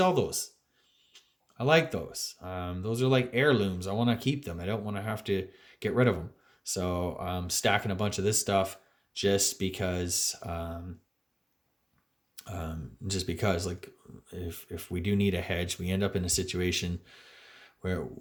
those. I like those. Those are like heirlooms. I want to keep them. I don't want to have to get rid of them. So I'm stacking a bunch of this stuff just because, like, if we do need a hedge, we end up in a situation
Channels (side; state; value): both; identical; correlation 1.00